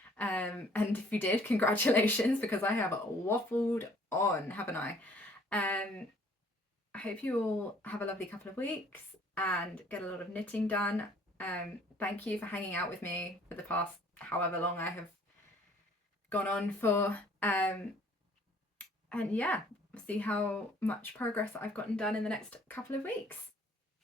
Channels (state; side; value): normal; both; correlation 0.58